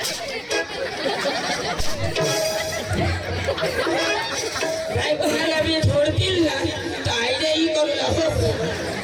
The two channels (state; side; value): identical; both; correlation 1.00